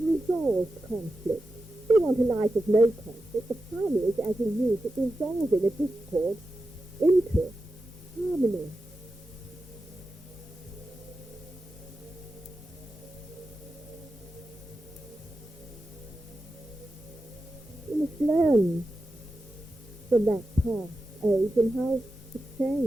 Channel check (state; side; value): normal; both; correlation 0.91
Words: resolved conflict. We want a life of no conflict. The fun is, as you use it, resolving a discord into harmony. You must learn from that past age and how it